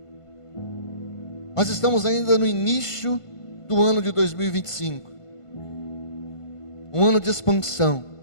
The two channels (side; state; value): right; late; 1.5 ms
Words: Nós estamos ainda no início do ano de 2025. Um ano de expansão.